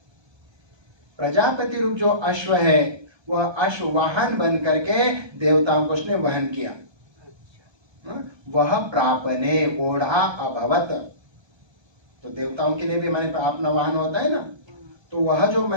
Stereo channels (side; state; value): left; late; 1.3 ms